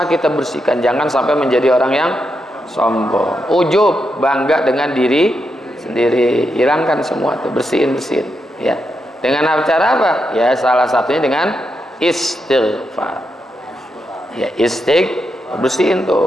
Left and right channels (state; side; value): normal; both; correlation 0.84